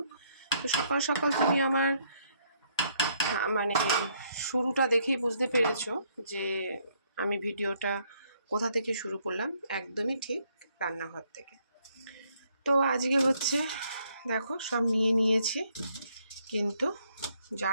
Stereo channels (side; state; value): both; inverted; correlation -0.70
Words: তো সকাল সকাল তুমি আমার মানে শুরুটা দেখেই বুঝতে পেরেছো যে আমি ভিডিওটা কোথা থেকে শুরু করলাম। একদমই ঠিক, রান্নাঘর থেকে। তো আজকে হচ্ছে দেখো সব নিয়ে নিয়েছি, কিন্তু যা